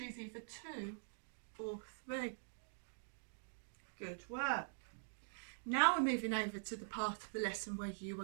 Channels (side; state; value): left; silent; digital silence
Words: either 2 or 3. Good work. Now we're moving over to the part of the lesson where you